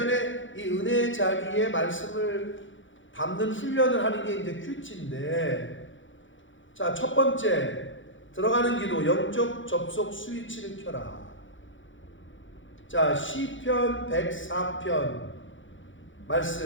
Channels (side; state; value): right; late; 0.56 ms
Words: 이 은혜의 자리에 말씀을 담는 훈련을 하는 게 이제 큐티인데, 자, 첫 번째 들어가는 기도, 영적 접속 스위치를 켜라. 자, 시편 104편